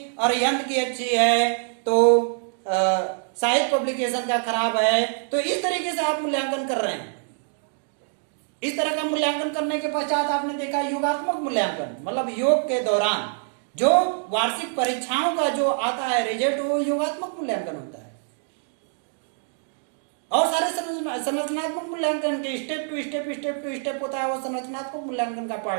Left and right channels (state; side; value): silent; left; 62 dB below the other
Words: और यंत्र की अच्छी है तो साहित्य पब्लिकेशन का खराब है, तो इस तरीके से आप मूल्यांकन कर रहे हैं। इस तरह का मूल्यांकन करने के पश्चात आपने देखा योगात्मक मूल्यांकन, मतलब योग के दौरान जो वार्षिक परीक्षाओं का जो आता है रिजल्ट, वो योगात्मक मूल्यांकन होता है। और सारे संरचनात्मक मूल्यांकन के स्टेप टू स्टेप होता है, वो संरचनात्मक मूल्यांकन का